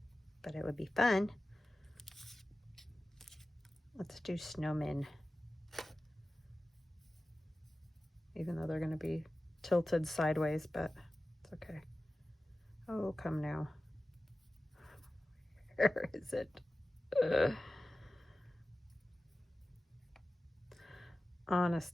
But it would be fun. Let's do snowmen. Even though they're going to be tilted sideways, but it's okay. Oh, come now. Where is it?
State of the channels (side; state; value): both; normal; correlation 0.95